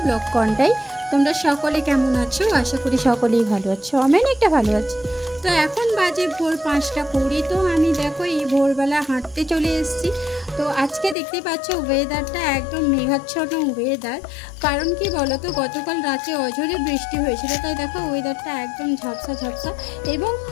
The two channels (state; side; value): drops out; right; at 11.2 s